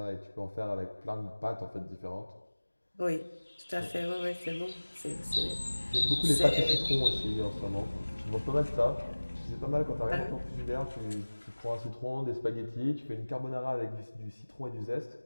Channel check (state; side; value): inverted; both; correlation -1.00